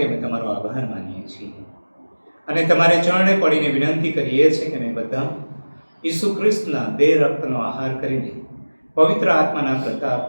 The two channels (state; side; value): inverted; both; correlation -1.00